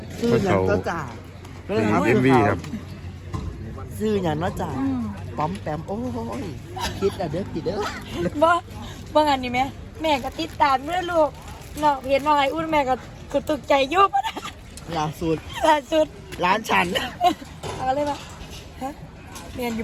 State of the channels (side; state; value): both; identical; correlation 1.00